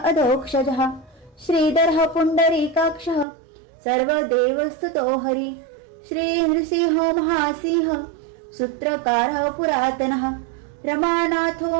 अधोक्षजः श्रीधरः पुण्डरीकाक्षः सर्वदेवस्तुतो हरि श्रीनृसिंह महासिंह सूत्रकारः पुरातनः रमानाथो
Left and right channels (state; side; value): drops out; left; at 3.2 s